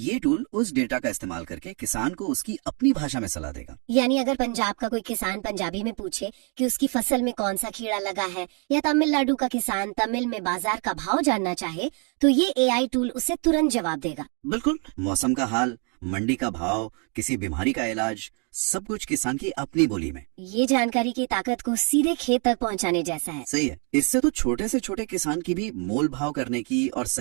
टूल उस डेटा का इस्तेमाल करके किसान को उसकी अपनी भाषा में सलाह देगा। यानी अगर पंजाब का कोई किसान पंजाबी में पूछे कि उसकी फसल में कौन सा कीड़ा लगा है, या तमिलनाडु का किसान तमिल में बाजार का भाव जानना चाहे, तो ये AI टूल उसे तुरंत जवाब देगा। बिल्कुल। मौसम का हाल, मंडी का भाव, किसी बीमारी का इलाज, सब कुछ किसान की अपनी बोली में। ये जानकारी की ताकत को सीधे खेत तक पहुंचाने जैसा है। सही है। इससे तो छोटे से छोटे किसान की भी मोल भाव करने की और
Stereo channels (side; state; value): left; quieter; 37.8 dB